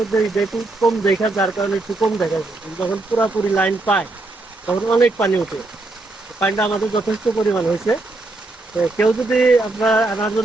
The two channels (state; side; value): quieter; left; 3.0 dB